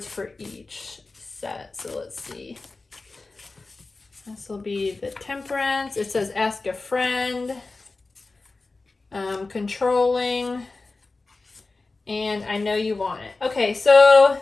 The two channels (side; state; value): right; quieter; 3.6 dB